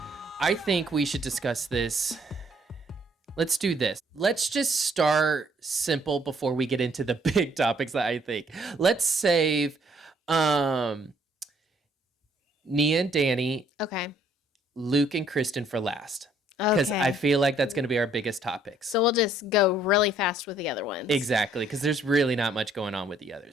I think we should discuss this. Let's do this. Let's just start simple before we get into the big topics that I think. Let's save Nia and Danny, Okay. Luke and Kristen for last. Because Okay. I feel like that's going to be our biggest topics. So we'll just go really fast with the other ones. Exactly, because there's really not much going on with the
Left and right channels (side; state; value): both; normal; correlation 0.64